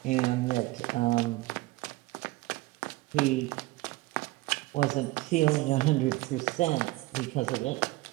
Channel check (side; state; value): left; quieter; 20.4 dB